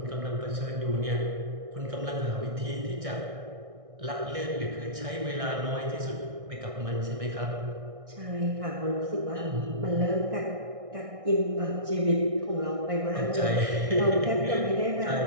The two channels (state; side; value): late; left; 1.6 ms